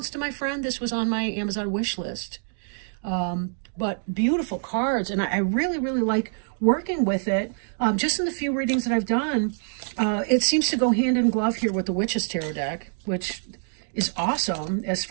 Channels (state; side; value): silent; left; digital silence